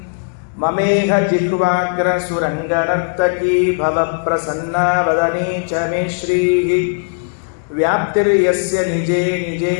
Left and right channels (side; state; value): right; silent; digital silence